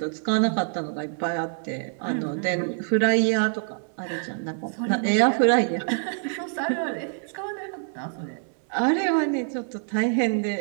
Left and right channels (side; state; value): left; silent; digital silence